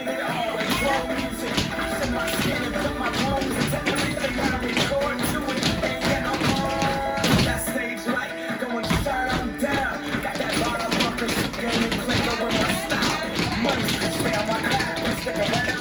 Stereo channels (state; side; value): identical; both; correlation 1.00